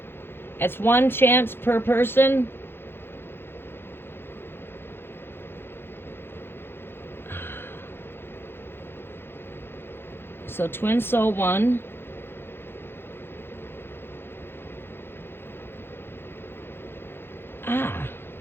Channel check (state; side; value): late; right; 0.11 ms